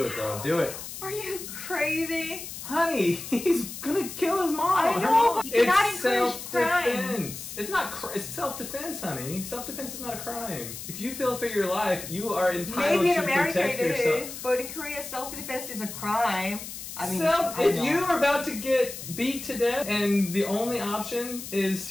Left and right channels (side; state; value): left; noise; hiss, 10 dB below the sound